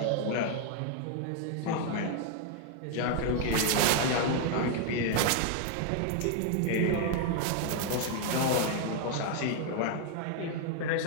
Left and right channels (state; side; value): different; both; correlation 0.01